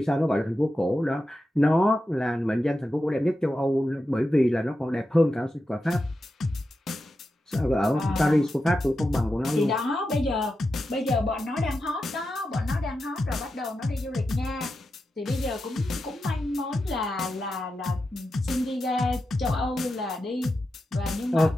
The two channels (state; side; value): normal; both; correlation 0.90